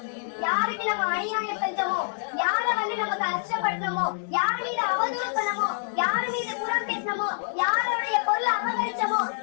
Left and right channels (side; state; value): right; silent; digital silence